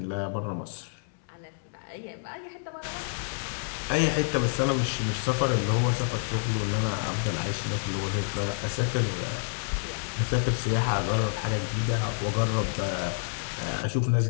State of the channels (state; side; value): silent; right; 59 dB below the other